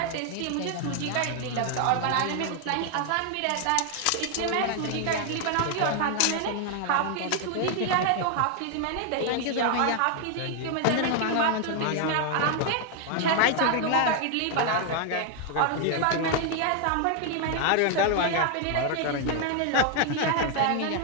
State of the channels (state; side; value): different; both; correlation 0.00